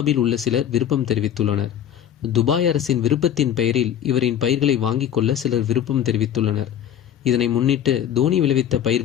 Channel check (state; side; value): quieter; right; 9.9 dB